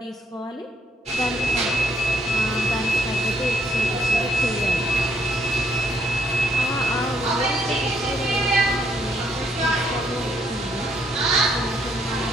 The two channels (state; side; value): normal; both; correlation 0.70